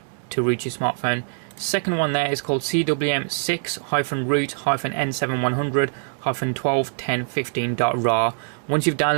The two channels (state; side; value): silent; left; 63 dB below the other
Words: to root your smartphone. Second one there is called CWM6-root-N7100-121015.rar. Once you've